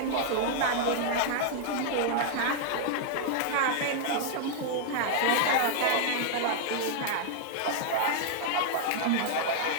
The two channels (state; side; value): different; both; correlation 0.00